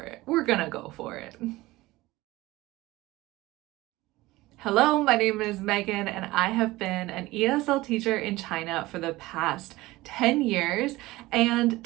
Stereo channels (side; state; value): left; quieter; 19.1 dB